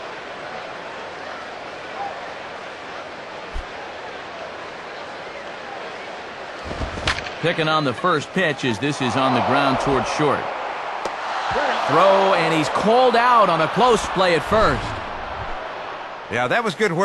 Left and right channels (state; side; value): identical; both; correlation 1.00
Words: Picking on the first pitch as this is on the ground towards short. Throw, and he's called out on a close play at first. Yeah, that was good